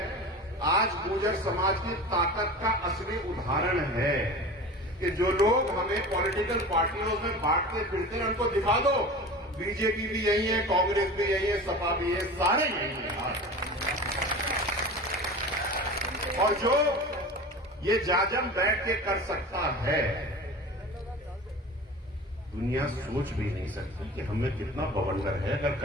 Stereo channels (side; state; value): both; normal; correlation 0.34